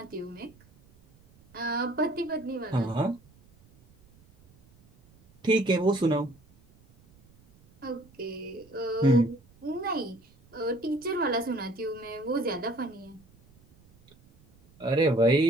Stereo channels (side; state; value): right; noise; rumble, 28 dB below the sound